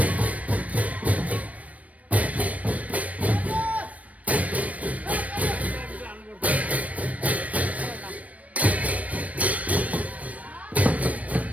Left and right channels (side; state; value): left; late; 0.068 ms